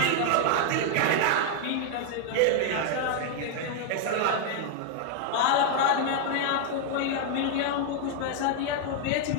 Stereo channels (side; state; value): both; different; correlation 0.00